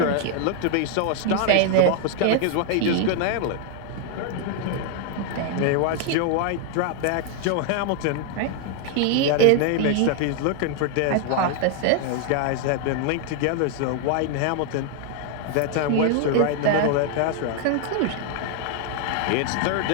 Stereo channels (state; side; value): different; both; correlation 0.00